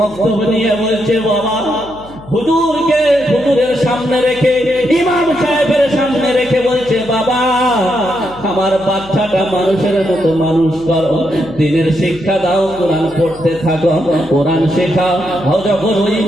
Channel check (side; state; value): left; noise; hum, 20 dB below the sound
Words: নিয়ে বলছে, বাবা হুজুরকে হুজুরের সামনে রেখে, ইমাম সাহেবের সামনে রেখে বলছে, বাবা আমার বাচ্চাটা মানুষের মতো মানুষ করো, দিনের শিক্ষা দাও, কোরআন পড়তে থাকো, কোরআন শেখাও। যখন ওই